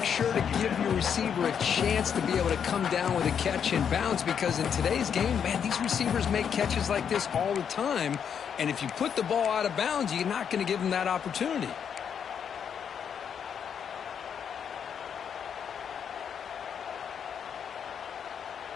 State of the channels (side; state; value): right; quieter; 7.7 dB